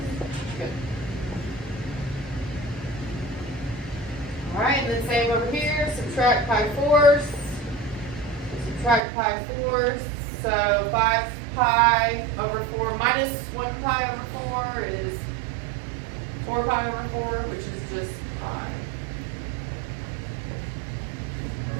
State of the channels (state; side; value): drops out; left; at 9.0 s